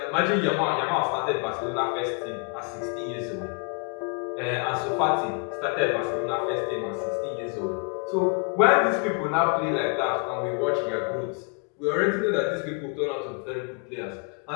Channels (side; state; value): right; quieter; 36.5 dB